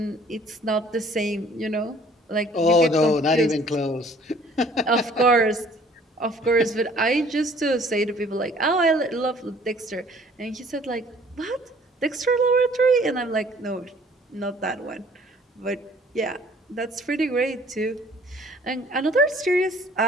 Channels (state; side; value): normal; both; correlation 0.55